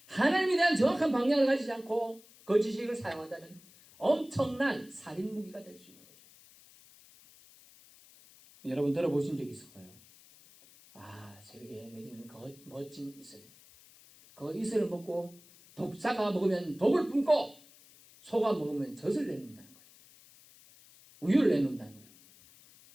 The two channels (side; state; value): left; noise; hiss, 24 dB below the sound